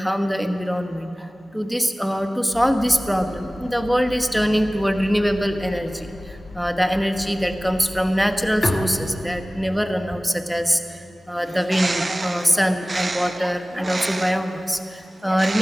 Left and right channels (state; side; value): normal; both; correlation 0.98